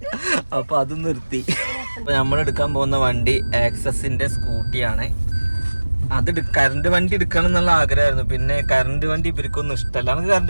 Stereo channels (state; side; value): inverted; both; correlation -1.00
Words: അപ്പൊ അത് നിർത്തി. അപ്പൊ നമ്മളെടുക്കാൻ പോകുന്ന വണ്ടി ആക്സസിന്റെ സ്കൂട്ടിയാണ്. അത് കറണ്ട് വണ്ടി എടുക്കണം എന്നുള്ള ആഗ്രഹമായിരുന്നു. പിന്നെ കറണ്ട് വണ്ടി ഇവർക്കൊന്നും ഇഷ്ടമല്ല. നമുക്ക്